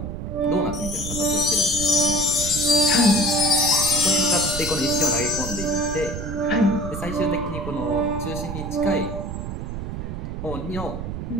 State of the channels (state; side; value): noise; right; rumble, 6 dB below the sound